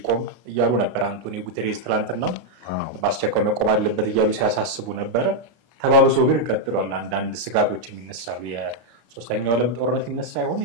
እያሉ ነበር አንቶኒዮ ጉተሬዝ ትላንትና በአስቸኳይ መቆም አለበት እያሉ ሲያሳስቡ ነበር ተባብሶ ግን ቀጥሏል አንዳንድ ስጋቶች የሚነሳሉ የሶስተኛው ዓለም ጦርነት ይነሳ ይሆን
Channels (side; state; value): left; late; 32 ms